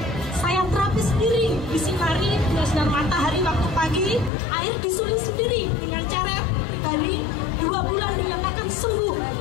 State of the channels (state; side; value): drops out; right; at 4.3 s